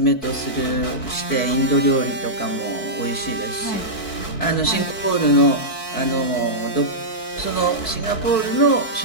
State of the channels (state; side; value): late; right; 4.5 ms